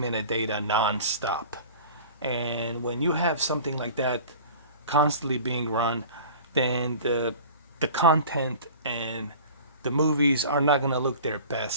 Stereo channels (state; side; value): inverted; both; correlation -0.41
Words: non-stop. And when you have something like that constantly being run, then the content and the movies are not going to look their